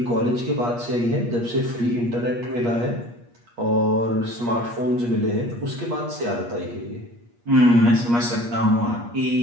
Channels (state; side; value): late; left; 8.4 ms